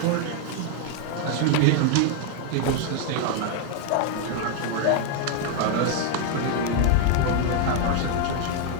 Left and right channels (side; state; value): both; different; correlation 0.00